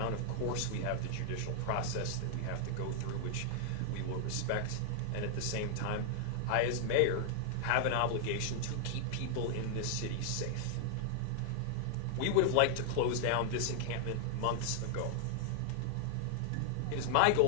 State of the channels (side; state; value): both; different; correlation 0.00